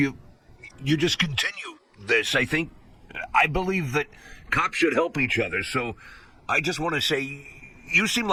just continue this. I believe that cops should help each other, so I just want to say, you seem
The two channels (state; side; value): identical; both; correlation 1.00